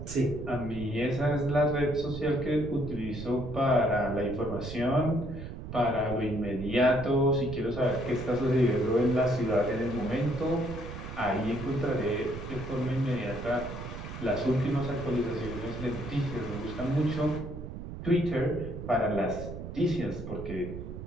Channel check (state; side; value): noise; right; rumble, 9 dB below the sound